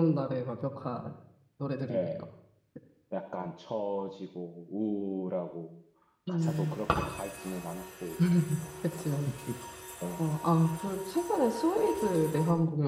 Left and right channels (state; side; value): identical; both; correlation 1.00